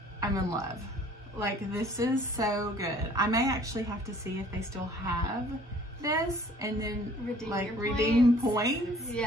I'm in love. Like, this is so good. I may actually have to see if they still have this and then redeem points.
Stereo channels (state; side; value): normal; both; correlation 0.54